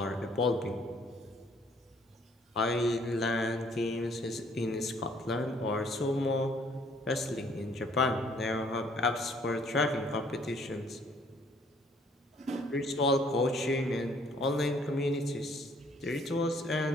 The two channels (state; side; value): normal; both; correlation 0.62